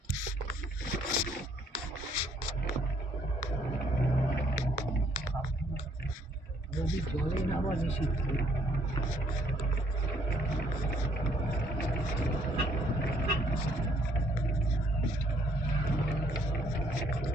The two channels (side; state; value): both; normal; correlation 0.66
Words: যদি জলে নামা নিষিদ্ধ।